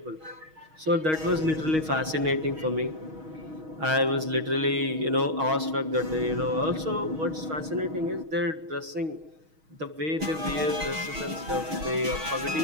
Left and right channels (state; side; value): late; left; 6.3 ms